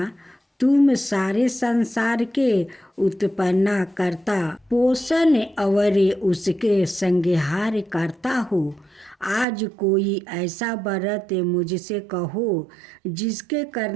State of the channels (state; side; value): drops out; left; at 9.5 s